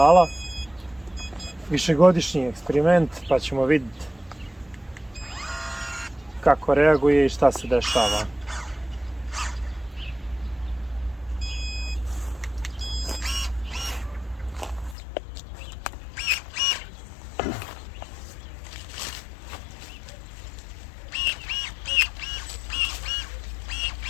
višegodišnji eksperiment, pa ćemo vidjeti kako reaguje i šta se dešava.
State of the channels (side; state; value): right; drops out; at 15.0 s